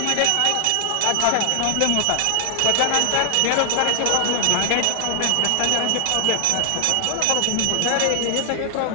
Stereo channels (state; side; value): different; both; correlation 0.00